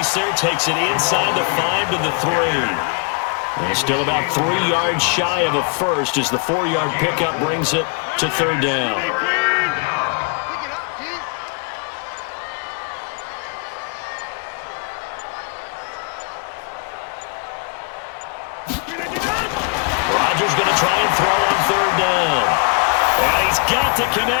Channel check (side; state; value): right; quieter; 35.8 dB